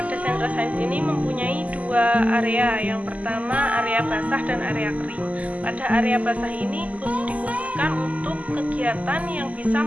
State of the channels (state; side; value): late; left; 0.072 ms